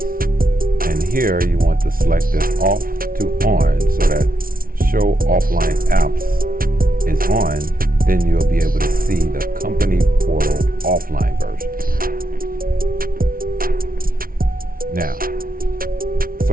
And here you want to select this off to on so that Show Offline Apps is on. Then you'll be able to see the company portal offline version. Now,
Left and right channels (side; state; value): left; late; 0.42 ms